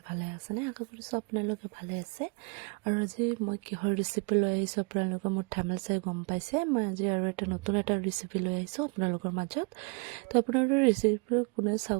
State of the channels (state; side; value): quieter; left; 31.7 dB